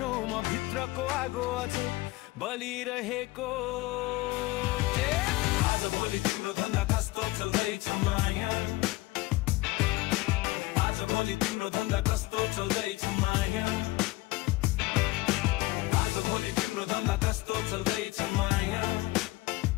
म भित्रको आगो अझै बलिरहेको आज भोलि तिम्रो धन्दा कस्तो चल्दैछ माया आज भोलि तिम्रो धन्दा कस्तो चल्दैछ माया आज भोलि तिम्रो धन्दा कस्तो चल्दैछ माया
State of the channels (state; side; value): quieter; right; 20.0 dB